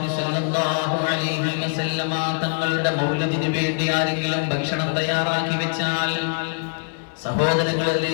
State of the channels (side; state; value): right; silent; digital silence